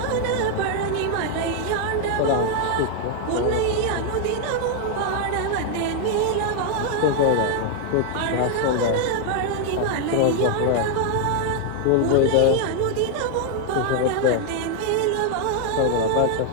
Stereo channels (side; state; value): both; different; correlation 0.00